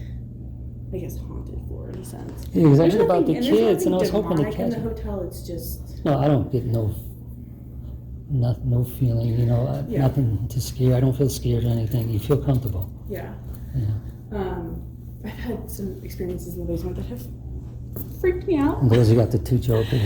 I guess, haunted floor in a sense. Yeah, because I There's heard about the nothing- there's kids, and I was nothing hoping to demonic in catch the it. hotel. It's just No, I don't get no feeling, Yeah. nothing to scare. I don't feel scared or anything. You feel comfortable. yeah. Yeah. I've had some experiences in the basement that have freaked me out. And those who got the 2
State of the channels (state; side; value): identical; both; correlation 1.00